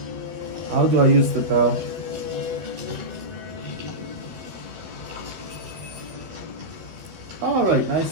How do I use the bell? Alright,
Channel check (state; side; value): late; left; 13 ms